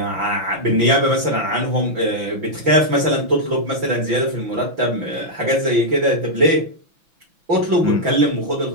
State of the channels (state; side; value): late; left; 6.0 ms